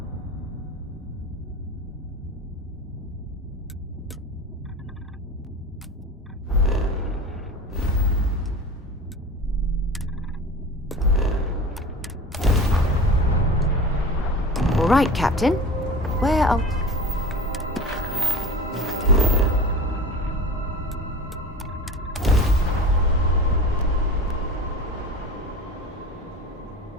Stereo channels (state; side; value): normal; both; correlation 0.34